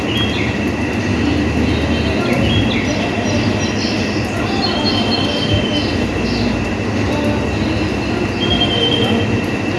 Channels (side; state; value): both; identical; correlation 1.00